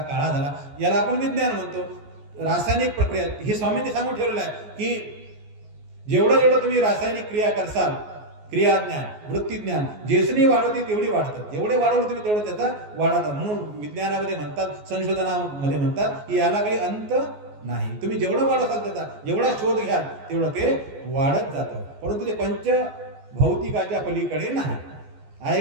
काळा झाला, याला आपण विज्ञान म्हणतो. रासायनिक प्रक्रिया हे स्वामींनी सांगून ठेवलेलं आहे की जेवढं तुम्ही रासायनिक क्रिया करसाल, क्रियाज्ञान, वृत्तीज्ञान जेसनी वाढवते तेवढी वाढतात. जेवढे वाढवलं तुम्ही तेवढं त्याचा वाढतात. म्हणून विज्ञानामध्ये म्हणतात, संशोधनामध्ये म्हणतात की याला काही अंत नाही. तुम्ही जेवढं वाढवताल त्याचा, जेवढा शोध घ्याल तेवढं ते वाढत जातं. परंतु ते पंचभौतिकाच्या पलीकडे नाही. आहे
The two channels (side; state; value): left; late; 14 ms